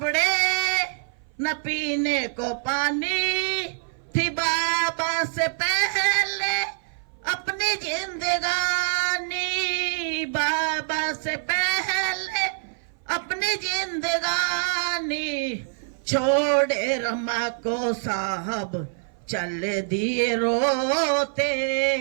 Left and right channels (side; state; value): left; silent; 58 dB below the other